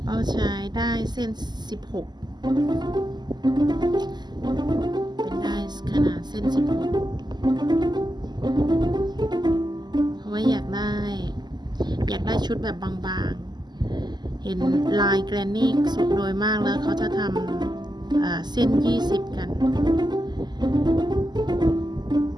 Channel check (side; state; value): left; late; 0.21 ms